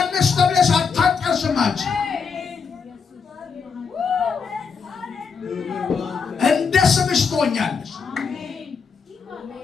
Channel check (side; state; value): right; quieter; 5.7 dB